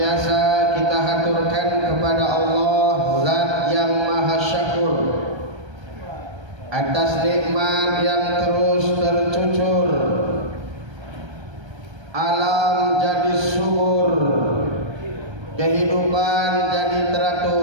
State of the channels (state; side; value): late; left; 1.3 ms